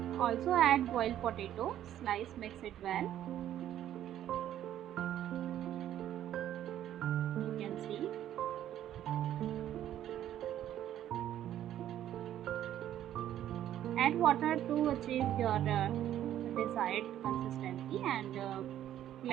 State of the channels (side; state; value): left; quieter; 11.6 dB